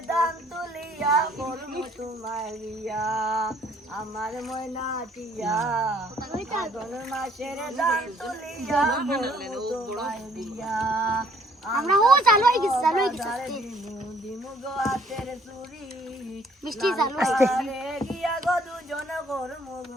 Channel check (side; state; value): both; normal; correlation 0.62